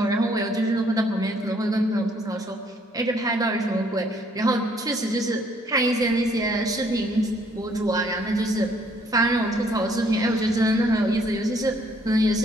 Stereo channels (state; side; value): normal; both; correlation 0.65